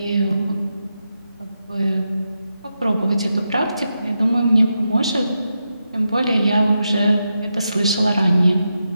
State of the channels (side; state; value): both; inverted; correlation -0.87